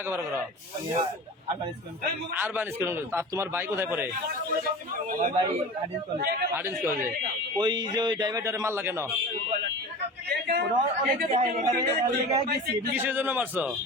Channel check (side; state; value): both; normal; correlation 0.34